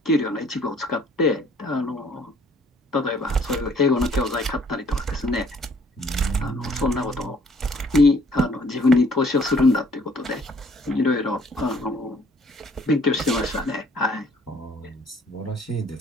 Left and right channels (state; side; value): normal; both; correlation 0.59